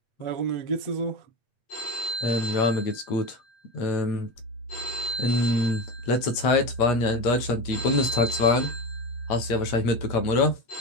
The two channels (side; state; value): right; late; 8.3 ms